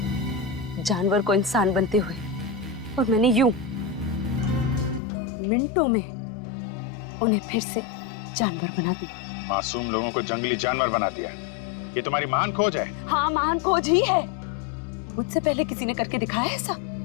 जानवर को इंसान बनते हुए, और मैंने यूं मिनटों में उन्हें फिर से जानवर बना दिया। मासूम लोगों को जंगली जानवर बना दिया। ये तुम्हारी महान खोज है? हाँ, महान खोज ही है। मुझसे पहले किसी ने करके दिखाया ऐसा?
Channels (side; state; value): right; drops out; at 5.0 s